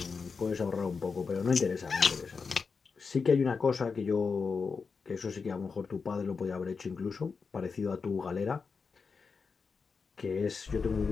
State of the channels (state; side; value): quieter; right; 5.1 dB